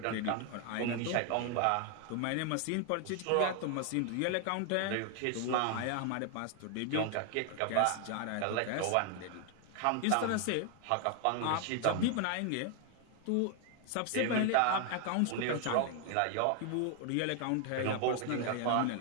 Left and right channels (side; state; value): both; different; correlation 0.00